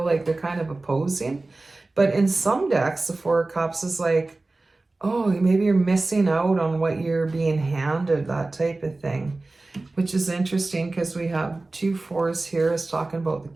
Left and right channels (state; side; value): quieter; left; 3.2 dB